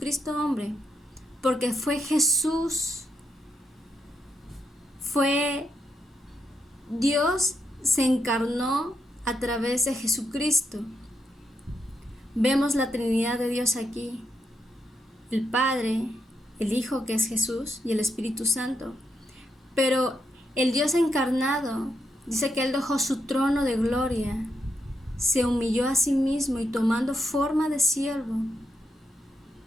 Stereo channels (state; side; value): normal; both; correlation 0.82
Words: hombre? Porque fue Jesús. Dios se encarnó a través de Jesucristo. Vemos la Trinidad de Dios aquí. El Padre, el Hijo que es Jesús y el Espíritu Santo. Pero el Dios encarnado dice que Él dejó su trono de gloria, se humilló a sí mismo y tomando forma de siervo,